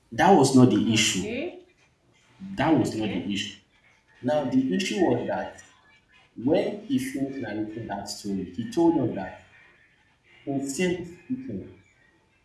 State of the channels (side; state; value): both; identical; correlation 1.00